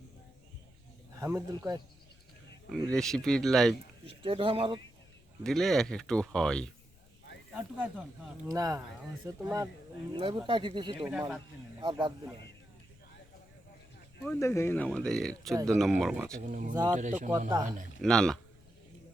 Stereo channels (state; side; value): noise; left; rumble, 27 dB below the sound